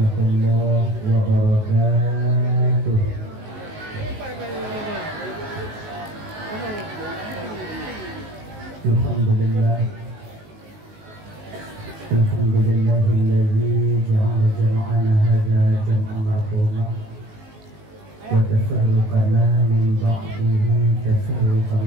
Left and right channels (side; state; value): left; late; 19 ms